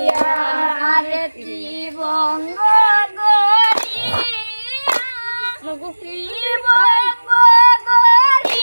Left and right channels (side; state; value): both; inverted; correlation -1.00